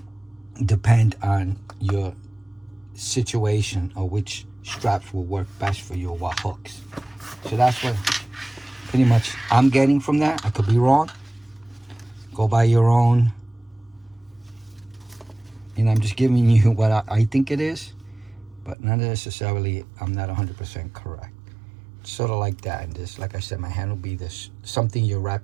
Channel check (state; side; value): drops out; left; at 18.8 s